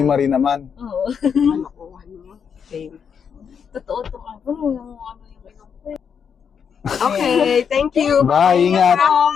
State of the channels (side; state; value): right; quieter; 7.1 dB